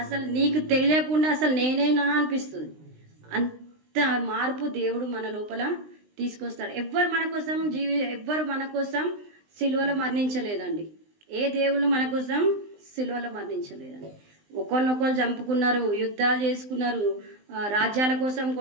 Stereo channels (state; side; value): late; left; 19 ms